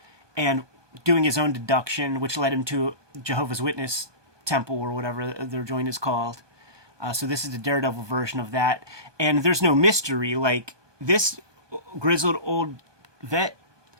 and doing his own deduction, which led him to Jehovah's Witness temple or whatever their joint is called. So this is the Daredevil version of that, and there's no mystery. Like, this grizzled old vet,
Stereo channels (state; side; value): late; left; 1.2 ms